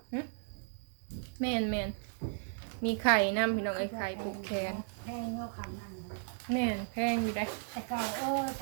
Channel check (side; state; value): left; silent; 54 dB below the other